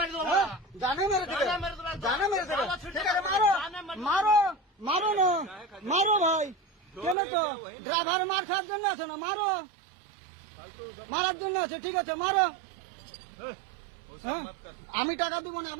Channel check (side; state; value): left; drops out; at 7.2 s